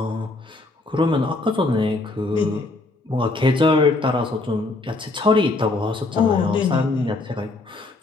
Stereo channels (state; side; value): quieter; right; 3.1 dB